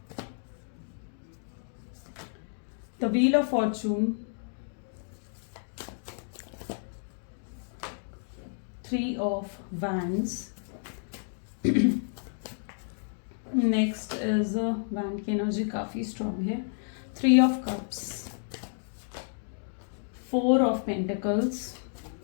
the wheel of Fortune, 3 of wands. Next is wand की एनर्जी काफी स्ट्रॉन्ग है। 3 of cups, 4 of pentacles,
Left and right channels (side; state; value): right; silent; digital silence